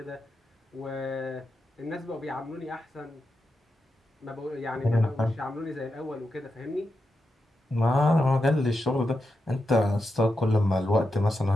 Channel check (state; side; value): normal; both; correlation 0.87